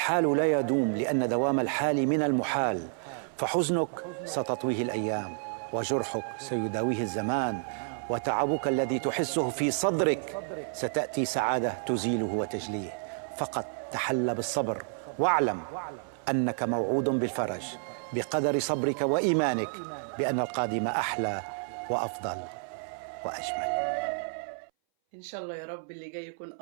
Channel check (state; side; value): silent; left; 58 dB below the other